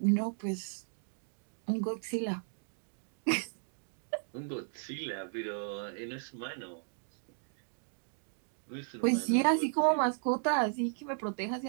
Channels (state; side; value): silent; left; digital silence